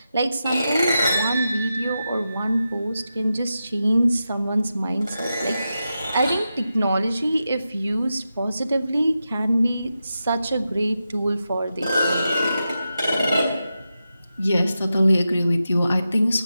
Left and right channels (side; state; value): both; inverted; correlation -0.90